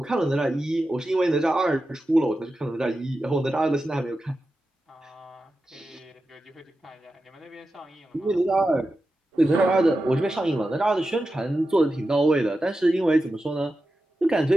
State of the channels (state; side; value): normal; both; correlation 0.91